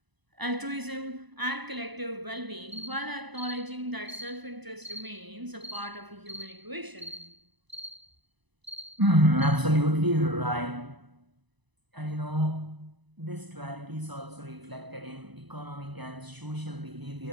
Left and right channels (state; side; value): late; left; 1.0 ms